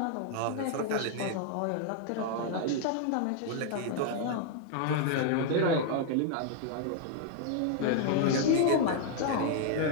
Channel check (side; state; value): both; different; correlation 0.00